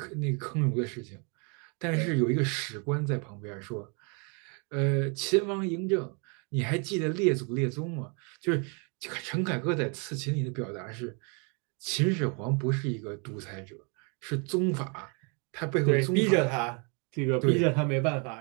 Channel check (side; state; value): left; quieter; 35.6 dB